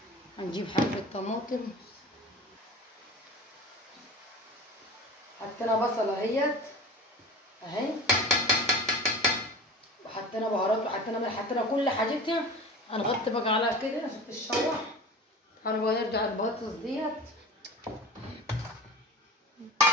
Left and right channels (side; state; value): both; normal; correlation 0.35